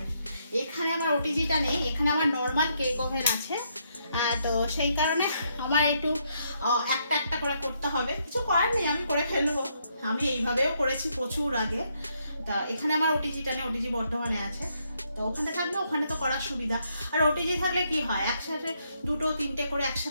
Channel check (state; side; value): inverted; both; correlation -0.75